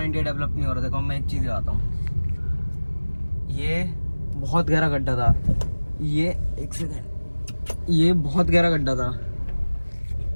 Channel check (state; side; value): inverted; both; correlation -1.00